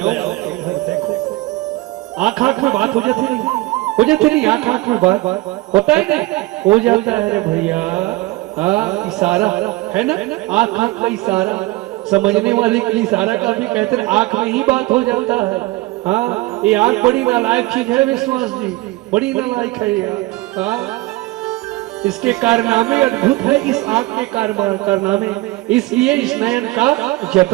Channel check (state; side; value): quieter; left; 20.4 dB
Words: देखो आंख आंख में बात हो जाती नहीं, हो जाती नहीं, आंख आंख में बात होता है नहीं, हो जाता है रे भैया। इशारा है ना, आंख आंख का इशारा, समझने वाले के लिए इशारा का भी कहते हैं, आंख में ही बात हो जाता है। हाँ, ये आंख बड़ी नालायक चीज है विश्वास जी, बड़ी नालायक है ये। इसके कारनामे अद्भुत है, इस आंख के कारनामे, इसलिए इस नयन का